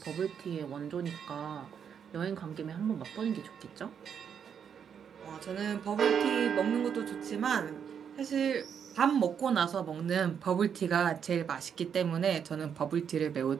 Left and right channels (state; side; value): quieter; left; 7.7 dB